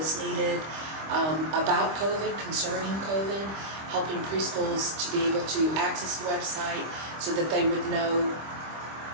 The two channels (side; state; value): left; late; 25 ms